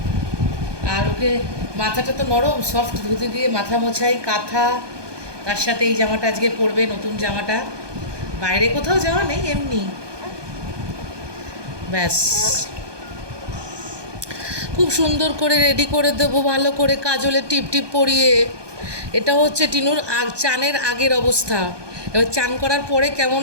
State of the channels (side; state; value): left; late; 1.2 ms